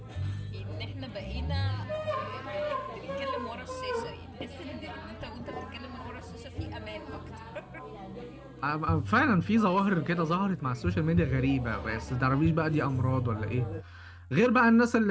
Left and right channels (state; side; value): identical; both; correlation 1.00